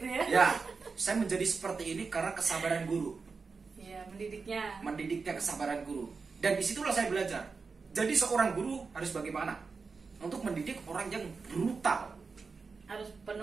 ya. ya, saya menjadi seperti ini karena kesabaran guru. Iya, mendidiknya. Mendidiknya kesabaran guru. Dan disitulah saya belajar. Jadi seorang guru harus bagaimana? Untuk mendidik orang yang brutal. Harus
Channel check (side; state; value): left; quieter; 4.7 dB